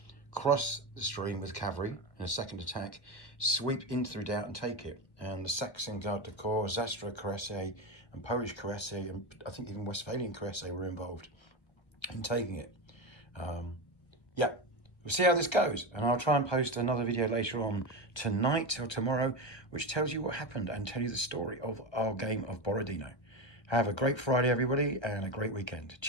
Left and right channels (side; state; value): right; late; 1.3 ms